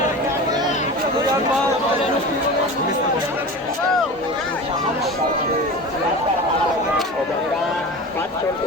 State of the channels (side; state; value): both; normal; correlation 0.32